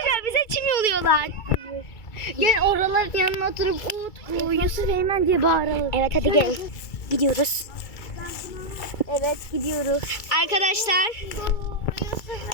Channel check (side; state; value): right; late; 2.3 ms